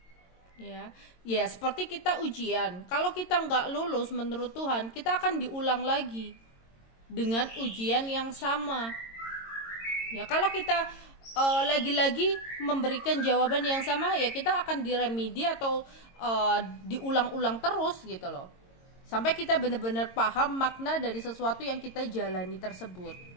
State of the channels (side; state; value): right; late; 22 ms